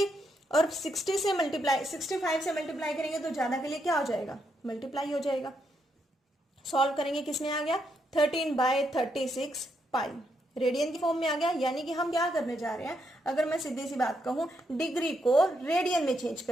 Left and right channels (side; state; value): both; normal; correlation 0.78